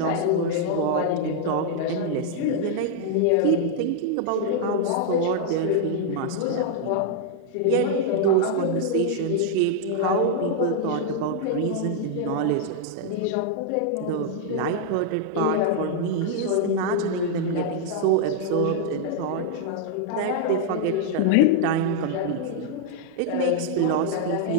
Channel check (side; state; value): both; different; correlation 0.00